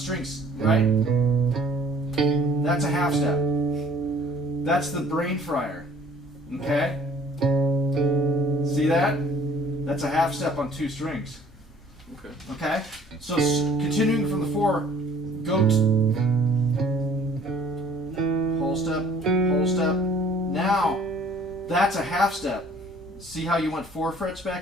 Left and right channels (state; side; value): normal; both; correlation 0.54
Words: right? That's a half step. That's the brain fryer. Okay? See that? That's a half step on 2 strings. Okay, so continuing from the 4, go to whole step, whole step. Now, that's a half step. See how you went 4 frets